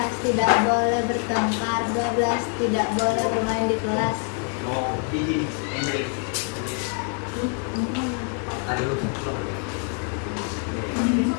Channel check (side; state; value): right; quieter; 39.0 dB